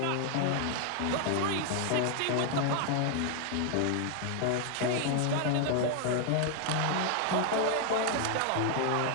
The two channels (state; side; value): different; both; correlation 0.00